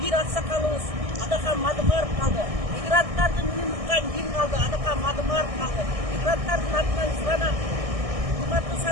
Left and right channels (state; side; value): late; left; 1.6 ms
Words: аксакалыбыз Адахан Мадымаров калды. Мигранттардын үнүн уккан ким калды? Адахан Мадымаров калды. Мигранттардын атынан суранам. Урматтуу